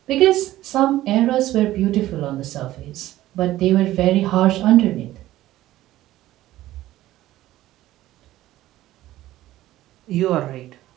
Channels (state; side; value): quieter; left; 15.1 dB